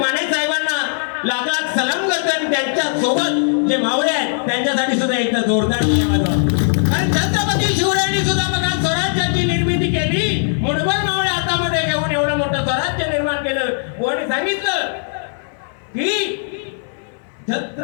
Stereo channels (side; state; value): right; silent; 60 dB below the other